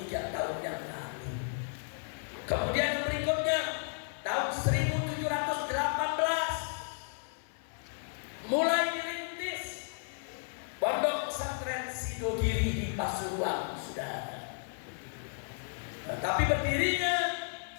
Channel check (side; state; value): right; silent; digital silence